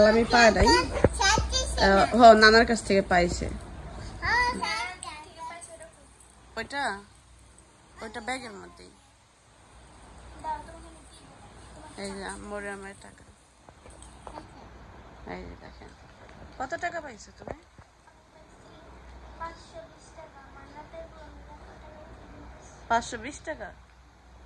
পায় নাই। নানার কাছ থেকে পাইছে। ওইটা ওইটা ব্যাগের মধ্যেই। এই যে মরিয়মের টাকা। এই যে দেখেন কত টাকা পাইছো তুমি? 520 টাকা।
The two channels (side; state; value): both; identical; correlation 1.00